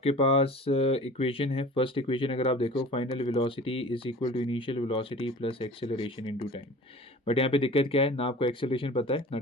पास इक्वेशन है, फर्स्ट इक्वेशन अगर आप देखो, final velocity is equal to initial velocity plus acceleration into time. But यहाँ पे दिक्कत क्या है, ना आपको एक्सेलरेशन पता है ना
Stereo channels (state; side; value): normal; both; correlation 0.41